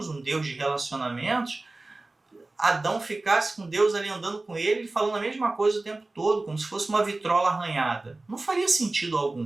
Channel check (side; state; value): left; quieter; 3.1 dB